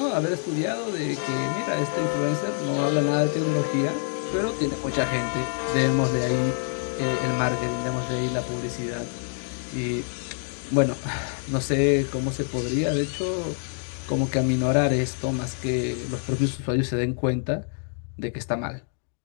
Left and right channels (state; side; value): silent; right; 61 dB below the other